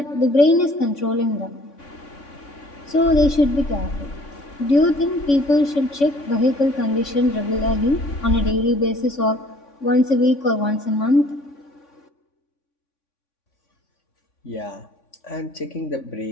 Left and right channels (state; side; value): late; right; 3.5 ms